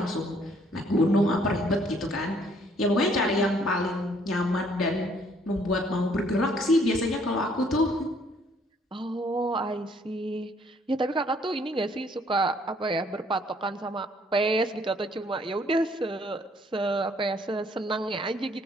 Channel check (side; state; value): both; normal; correlation 0.64